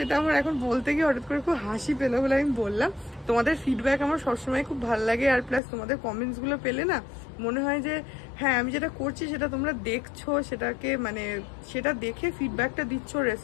আমার এখন বলতে গিয়ে হঠাৎ করে খুব হাসি পেলো বলে আমি বললাম। তোমাদের ফিডব্যাক আমার সবসময় খুব ভালো লাগে, আর প্লাস তোমাদের কমেন্টস গুলো পেলে না মনে হয় যে হ্যাঁ আমি যেটা করছি সেটা তোমরা দেখছো, সেটাকে মানে সেটা দেখে ফিডব্যাকটা দিচ্ছ,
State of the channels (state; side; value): drops out; right; at 5.6 s